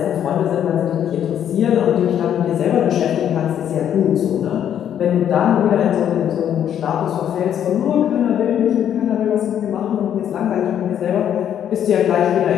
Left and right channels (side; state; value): right; quieter; 9.7 dB